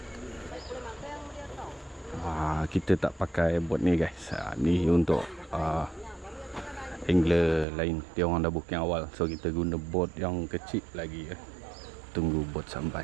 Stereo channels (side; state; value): left; drops out; at 7.7 s